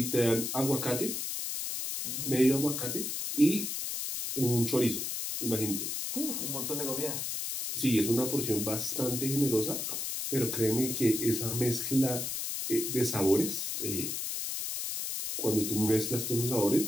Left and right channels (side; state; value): left; noise; hiss, 3 dB below the sound